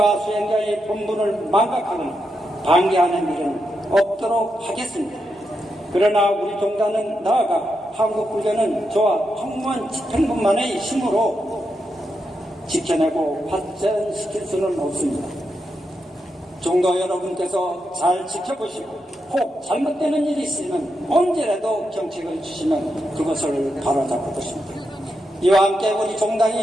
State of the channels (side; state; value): both; normal; correlation 0.85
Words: 수행자의 본분을 망각하거나 방해하는 일은 없도록 하겠습니다. 그러나 우리 종단은 나아가 한국불교는 저와 종무원 집행부만의 힘으로 지켜내고 발전시킬 수는 없습니다. 종도 여러분께서 잘 지켜보시고 혹 잘못되는 일이 있으면 언제라도 경책을 주시면 그것을 바로잡을 것입니다. 이와 함께 우리